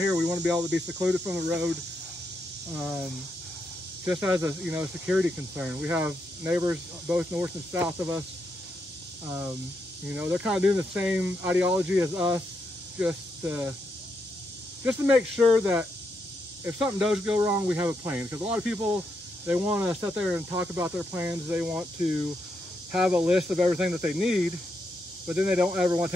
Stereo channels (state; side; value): normal; both; correlation 0.81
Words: we want to be able to be secluded from the road, just as a, you know, security concern. We have neighbors both north and south of us. You know, they're kind of doing the same ideology as us, just to make sure that if something does go wrong, we have a plan. Because a lot of people, they want to sit there and talk about their plans. They want to have a list of everything that they need, but then they don't ever want